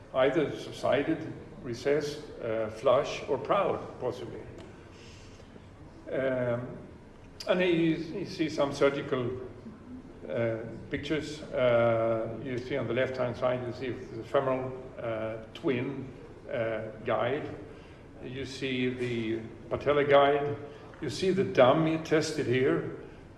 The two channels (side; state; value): both; identical; correlation 1.00